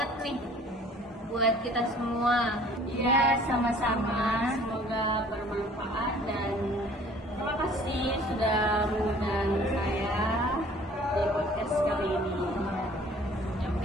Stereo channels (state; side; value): normal; both; correlation 0.53